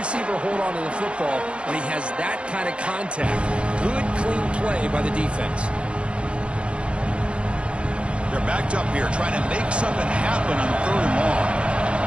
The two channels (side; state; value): left; late; 0.058 ms